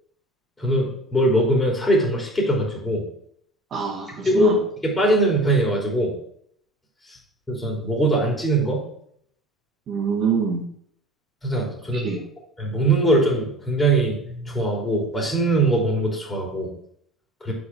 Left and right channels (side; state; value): both; normal; correlation 0.41